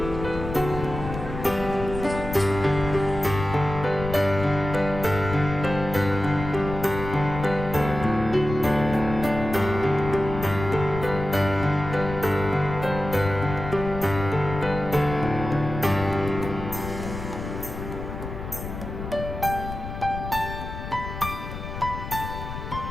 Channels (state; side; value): noise; left; rumble, 8 dB below the sound